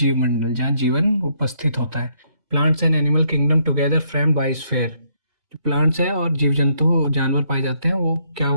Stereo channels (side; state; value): left; late; 1.8 ms